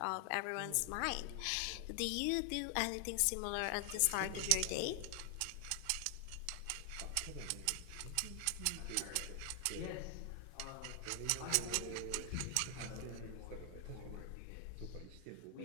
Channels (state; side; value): different; both; correlation 0.00